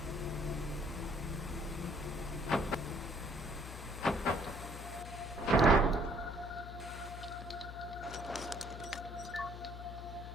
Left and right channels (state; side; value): noise; left; hum, 9 dB below the sound